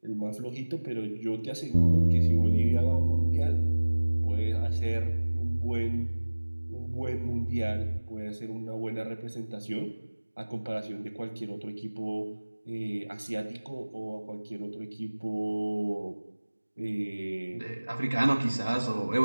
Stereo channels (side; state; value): both; inverted; correlation -1.00